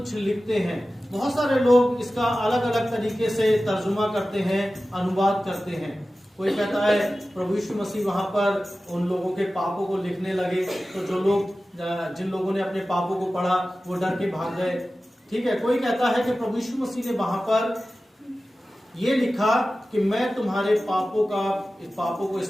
लिखते हैं। बहुत सारे लोग इसका अलग अलग तरीके से तर्जुमा करते हैं, अनुवाद करते हैं। कोई कहता है प्रभु यीशु मसीह वहां पर उन लोगों के पापों को लिखने लगे, तो जो लोग, जिन लोगों ने अपने पापों को पढ़ा वो डर के भाग गए। ठीक है। कोई कहता है कि प्रभु यीशु मसीह ने वहां पर ये लिखा कि मैं तुम्हारे पापों को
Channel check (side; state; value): both; normal; correlation 0.95